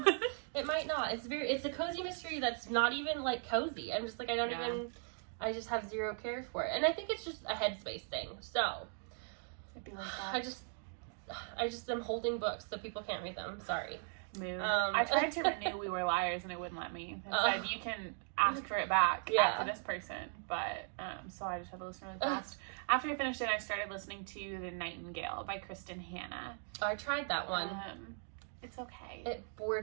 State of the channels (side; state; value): left; silent; 52 dB below the other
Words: it might not. It's a cozy mystery that's not even like cozy. I'm just like, I just have zero care for it, and I think it's just a headspace thing. So it'd be like that. I just am holding books so people can't read them. Sorry. Mood. I tried to renew We Were Liars and it wouldn't let me. It said you can ask for it back after this person, but so I just had to listen really fast. After I finished it, I started listening to The Nightingale by Christen Hannah. Oh, I tried that one. It's okay. It